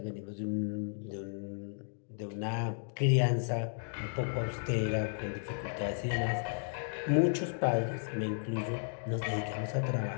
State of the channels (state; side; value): silent; right; digital silence